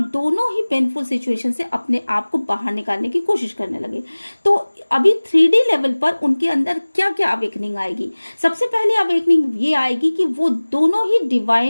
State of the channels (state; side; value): inverted; both; correlation -1.00